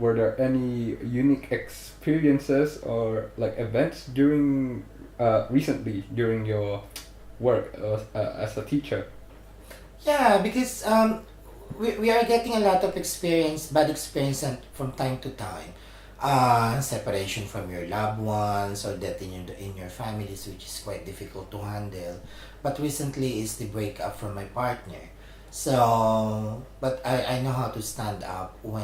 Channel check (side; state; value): both; identical; correlation 1.00